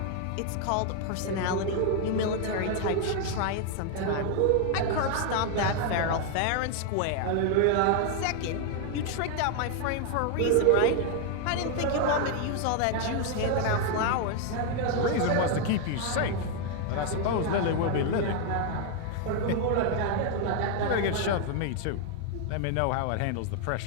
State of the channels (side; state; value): both; different; correlation 0.00